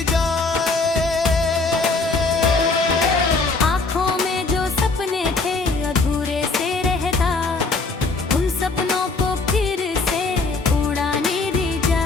जाए। आँखों में जो सपने थे अधूरे से रहता, उन सपनों को फिर से उड़ाने दी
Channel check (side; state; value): right; quieter; 3.8 dB